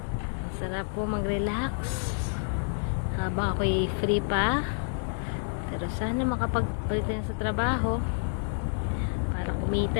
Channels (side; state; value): right; silent; digital silence